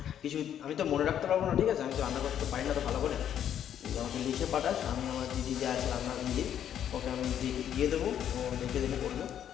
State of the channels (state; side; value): quieter; right; 9.9 dB